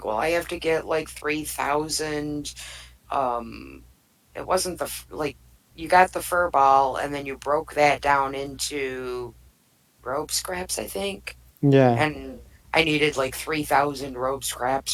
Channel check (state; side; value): identical; both; correlation 1.00